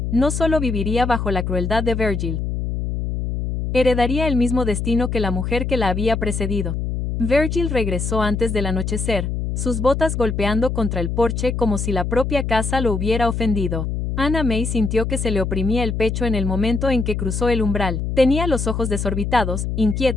no solo viviría bajo la crueldad de Virgil. Heredaría el mismo destino que la mujer que la había precedido. Virgil regresó antes del anochecer, sus botas golpeando contra el porche como si la propia casa lo hubiera ofendido. Anna May sintió que se le oprimía el pecho en el momento en que cruzó el umbral. Tenía los ojos desorbitados,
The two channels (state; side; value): noise; left; hum, 2 dB below the sound